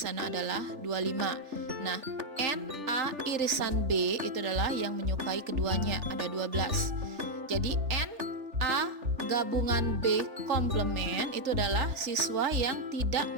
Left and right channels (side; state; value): left; late; 3.4 ms